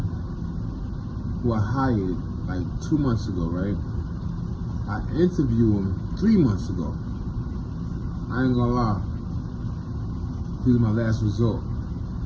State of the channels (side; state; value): both; identical; correlation 1.00